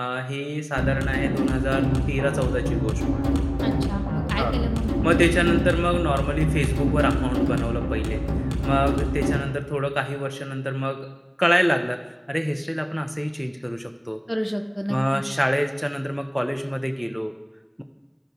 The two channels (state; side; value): identical; both; correlation 1.00